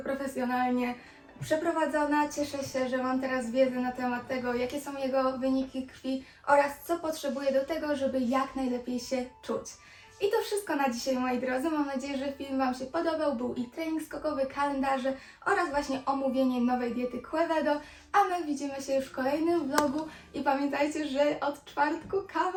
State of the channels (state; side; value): identical; both; correlation 1.00